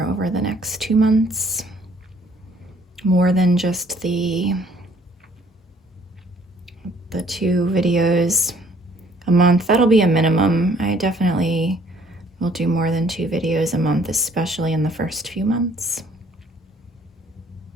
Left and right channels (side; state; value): both; normal; correlation 0.60